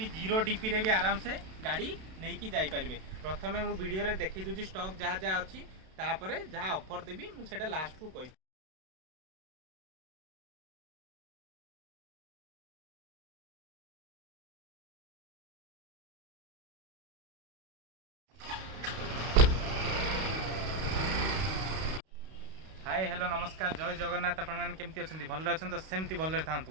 जीरो डीपी रे भी आराम से गाड़ी नहीं कि जापारे। प्रथम मु वीडियो देखी दूसरी स्टॉक जहाँ जहाँ अच्छी तापर जहाँ ऑफर देवी मुझे लास्ट को कह। हाय हेलो नमस्कार जय जगन्नाथ आपण मैंने केमती अच्छा भल अच्छा तो सेमती भल था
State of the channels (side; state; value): left; late; 32 ms